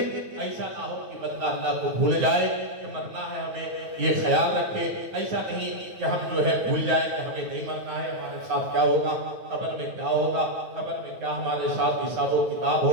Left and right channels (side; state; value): left; late; 9.5 ms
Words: ایسا نہ ہو کہ بندہ اللہ کو بھول جائے کہ مرنا ہے ہمیں، یہ خیال رکھے، ایسا نہیں کہ ہم جو ہے بھول جائیں کہ ہمیں نہیں مرنا ہے، ہمارے ساتھ کیا ہوگا، قبر میں کیا ہوگا، قبر میں کیا ہمارے ساتھ حساب و کتاب